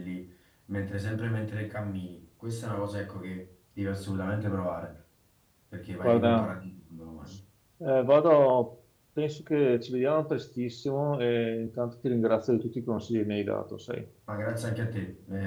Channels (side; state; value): both; identical; correlation 1.00